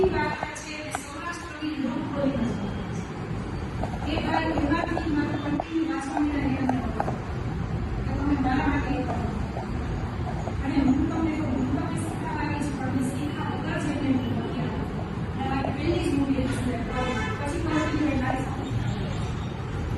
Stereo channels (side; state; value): both; identical; correlation 1.00